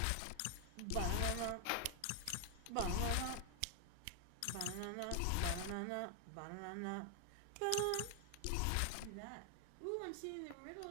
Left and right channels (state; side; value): different; both; correlation 0.00